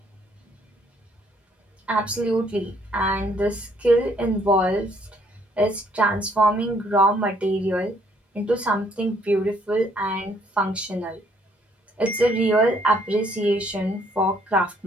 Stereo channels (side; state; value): both; normal; correlation 0.66